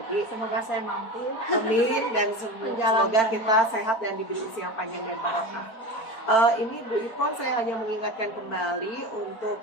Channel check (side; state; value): right; late; 4.5 ms